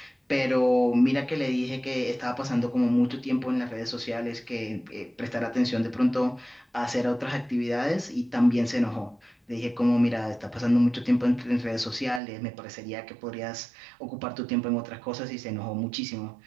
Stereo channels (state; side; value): drops out; left; at 12.2 s